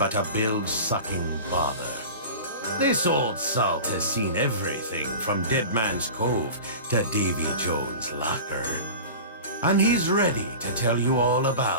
a bilge-sucking bother. This old salt has seen everything from Dead Man's Cove to Davy Jones' locker, and he's ready to tell you all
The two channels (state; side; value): inverted; both; correlation -0.34